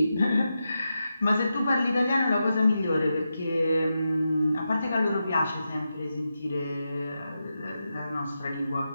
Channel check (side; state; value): both; inverted; correlation -0.88